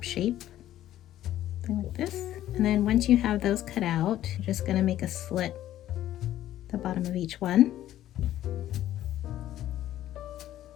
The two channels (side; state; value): right; quieter; 13.0 dB